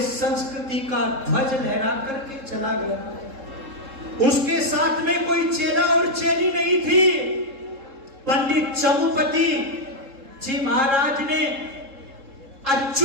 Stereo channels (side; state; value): left; late; 3.7 ms